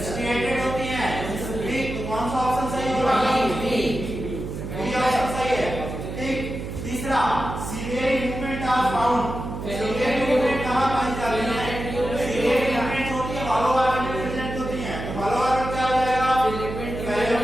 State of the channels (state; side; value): noise; right; hum, 7 dB below the sound